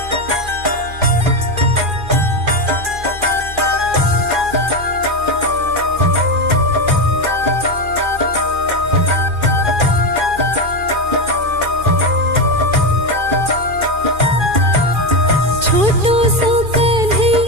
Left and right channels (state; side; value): late; left; 2.4 ms